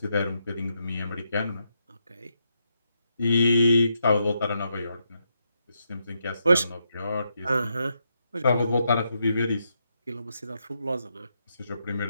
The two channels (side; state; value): both; inverted; correlation -0.81